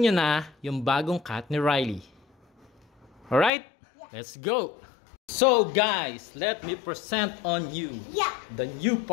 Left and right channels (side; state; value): right; drops out; at 3.5 s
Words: na yung bagong cat ni Riley. Alright? Let's go! So guys, let me present on you Yeah. the new